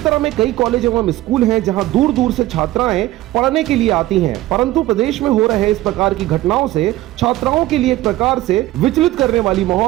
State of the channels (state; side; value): quieter; left; 16.3 dB